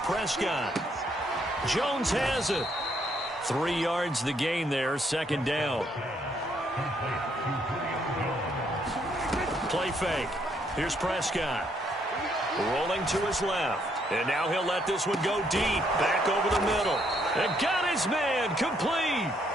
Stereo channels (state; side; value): normal; both; correlation 0.71